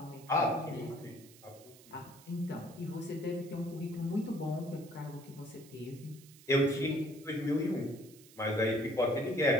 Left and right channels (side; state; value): right; noise; hiss, 22 dB below the sound